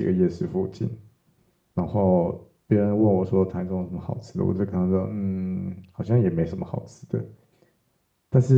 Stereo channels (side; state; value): both; identical; correlation 1.00